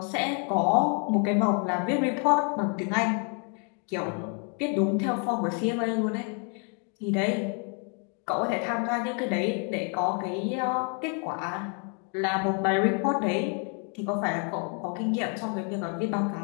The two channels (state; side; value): quieter; right; 39.4 dB